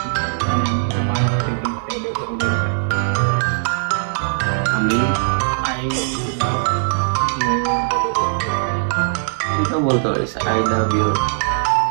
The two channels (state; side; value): silent; left; 57 dB below the other